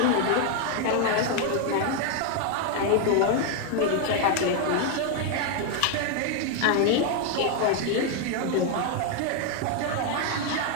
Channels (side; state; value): both; different; correlation 0.01